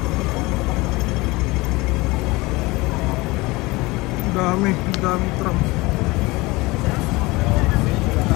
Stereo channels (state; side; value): quieter; right; 22.5 dB